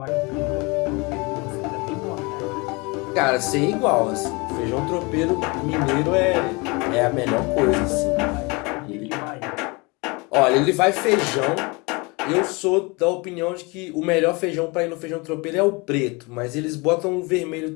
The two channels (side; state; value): right; quieter; 27.5 dB